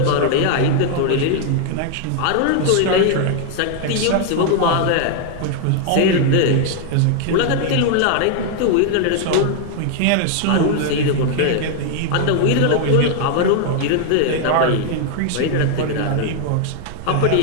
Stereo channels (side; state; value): both; different; correlation 0.00